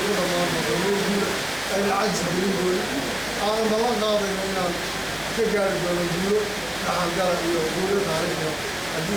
ku dhammaan doonto ay lacag gelin doona aan ballan qaadayno inaan ka gaari doono guulo dhaxalgala iyo guulo taariikhi haddii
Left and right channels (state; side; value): noise; right; hum, 28 dB below the sound